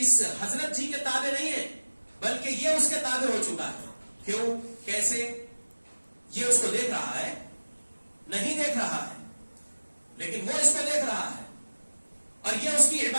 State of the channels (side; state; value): both; inverted; correlation -1.00